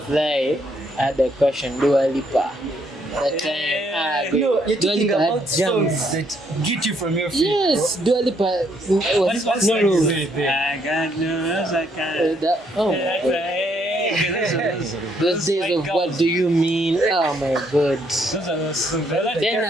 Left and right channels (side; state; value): both; normal; correlation 0.71